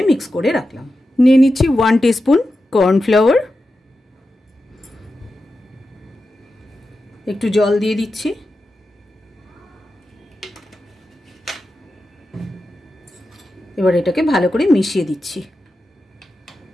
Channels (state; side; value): normal; both; correlation 0.91